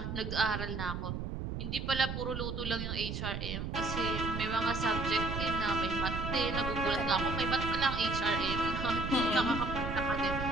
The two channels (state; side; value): noise; right; rumble, 4 dB below the sound